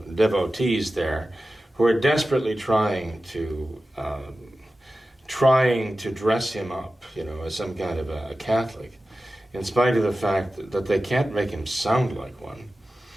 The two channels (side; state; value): both; normal; correlation 0.94